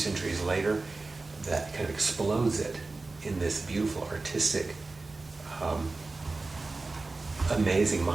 later that kind of explodes it in this beautiful, artistic, amazing,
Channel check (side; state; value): left; quieter; 3.5 dB